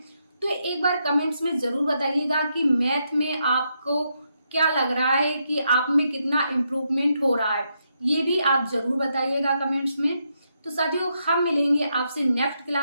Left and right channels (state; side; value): inverted; both; correlation -0.80